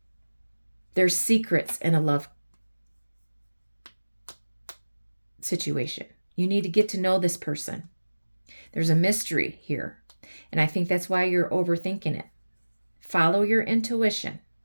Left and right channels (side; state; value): both; inverted; correlation -1.00